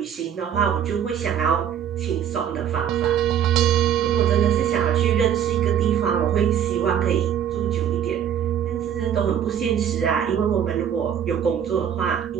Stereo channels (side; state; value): left; quieter; 9.1 dB